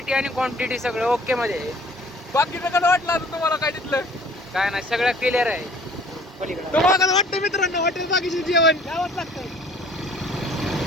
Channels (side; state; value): both; normal; correlation 0.53